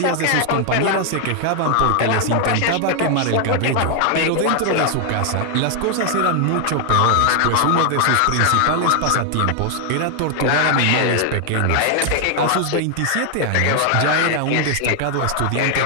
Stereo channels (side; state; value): both; different; correlation 0.00